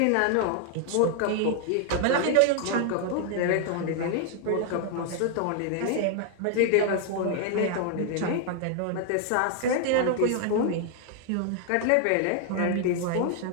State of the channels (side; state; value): both; different; correlation 0.00